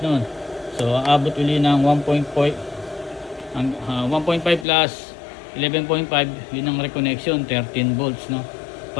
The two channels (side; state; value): right; drops out; at 4.7 s